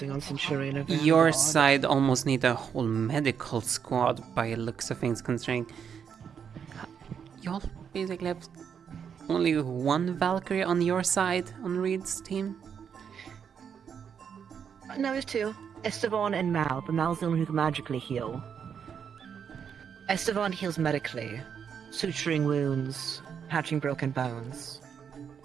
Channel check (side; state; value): left; quieter; 7.4 dB